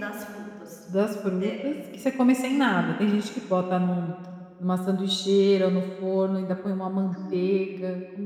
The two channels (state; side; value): identical; both; correlation 1.00